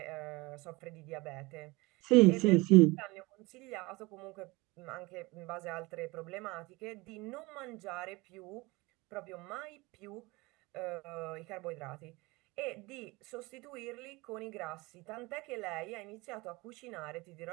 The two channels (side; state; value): left; quieter; 23.4 dB